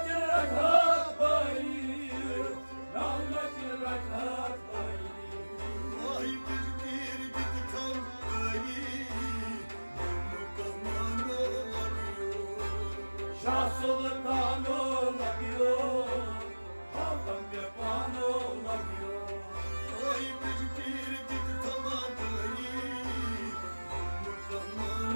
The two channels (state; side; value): inverted; both; correlation -1.00